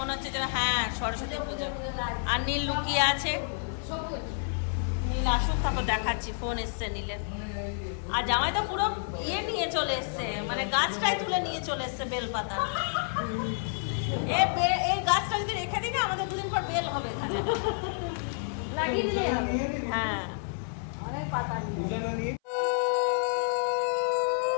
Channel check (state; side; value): silent; right; 57 dB below the other